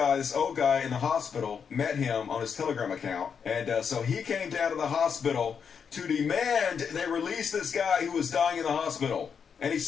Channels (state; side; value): quieter; right; 6.7 dB